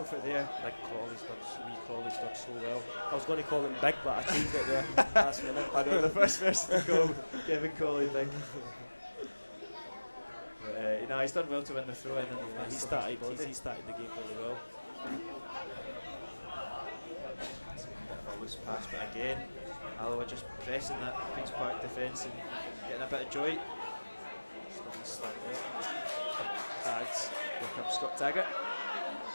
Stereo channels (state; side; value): inverted; both; correlation -1.00